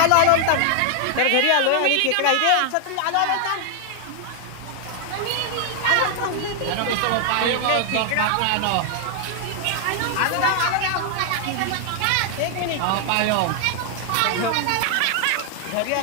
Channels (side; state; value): both; different; correlation 0.00